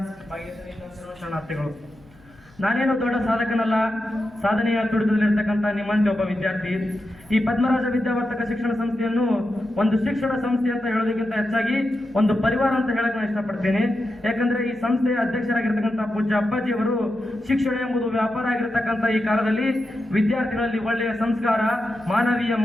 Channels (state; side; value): noise; left; hum, 28 dB below the sound